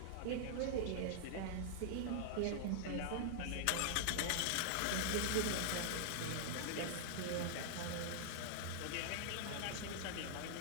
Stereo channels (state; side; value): different; both; correlation -0.01